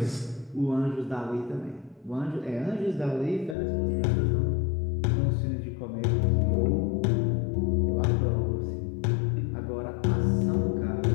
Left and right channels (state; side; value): drops out; right; at 3.6 s